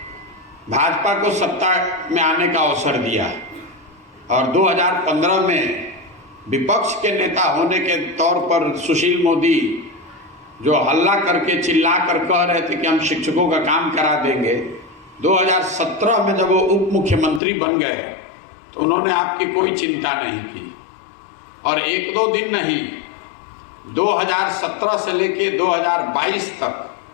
भाजपा को सत्ता में आने का अवसर दिया और 2015 में विपक्ष के नेता होने के तौर पर सुशील मोदी जो हल्ला करके चिल्ला कर कह रहे थे कि हम शिक्षकों का काम करा देंगे, 2017 में जब वो उप मुख्यमंत्री बन गए तो उन्होंने आपकी कोई चिंता नहीं की। और 1-2 दिन नहीं, 2017 से लेके 2022 तक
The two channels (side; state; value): right; drops out; at 17.4 s